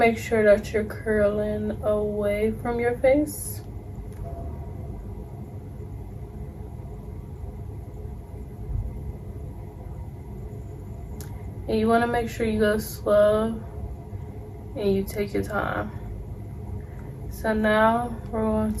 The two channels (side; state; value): both; identical; correlation 1.00